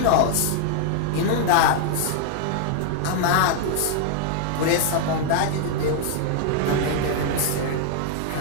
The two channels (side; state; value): both; different; correlation 0.00